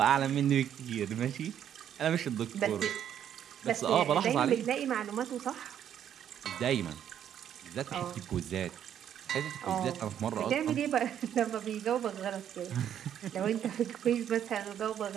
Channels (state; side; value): quieter; left; 9.8 dB